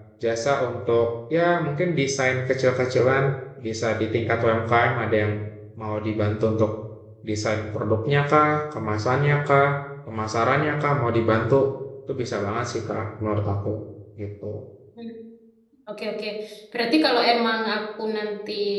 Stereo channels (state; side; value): identical; both; correlation 1.00